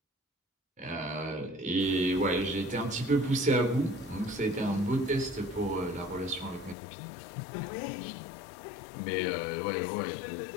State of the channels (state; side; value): drops out; right; at 6.8 s